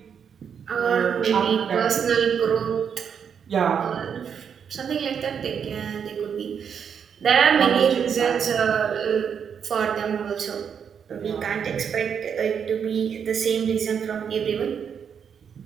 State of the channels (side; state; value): left; quieter; 7.4 dB